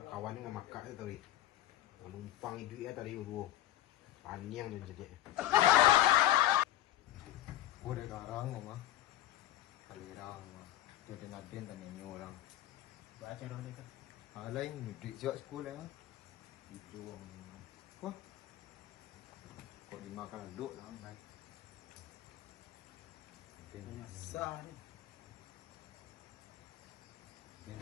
kawan ni memakak tu tadi. Numpang itu ya tadi dua. Paniang dan jadi. Kau ada garang mah. Kalirang mah. Jodoh ada tanya you orang. Baca dah dia. Lain duit siap sekolah. Itu orang. Wah. Kau dimakan duk lah. Nasa ni.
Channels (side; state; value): right; quieter; 13.9 dB